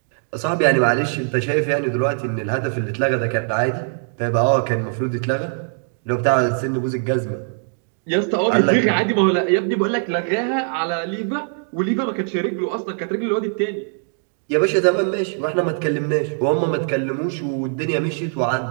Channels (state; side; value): silent; left; 58 dB below the other